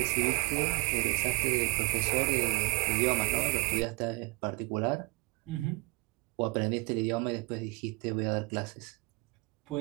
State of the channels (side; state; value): left; quieter; 25.4 dB